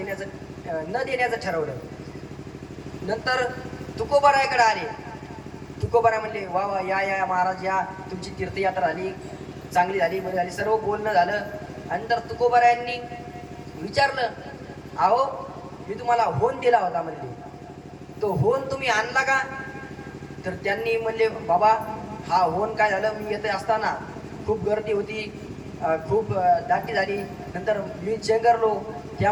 देण्याचं ठरवलं. नंतर तुकोबाराकडे आले. तुकोबारा म्हणले, वा वा, या महाराज, या तुमची तीर्थयात्रा झाली, चांगली झाली, बरी झाली. सर्व बोलणं झालं. नंतर तुकोबारायांनी विचारलं, अहो मी तुम्हाला होन दिला होता म्हणले, तो होन तुम्ही आणला का? तर त्यांनी म्हणले, बाबा हा होन काय झालं, मी येते असताना खूप गर्दी होती, खूप दाटी झाली, नंतर मी चेंगरलो,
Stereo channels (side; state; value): both; identical; correlation 1.00